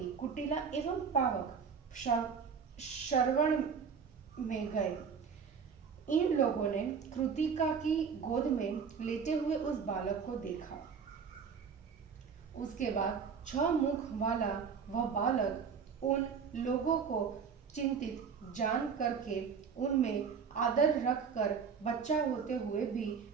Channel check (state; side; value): quieter; left; 6.3 dB